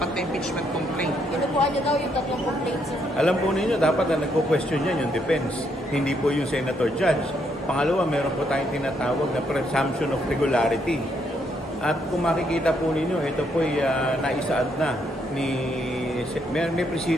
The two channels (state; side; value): normal; both; correlation 0.74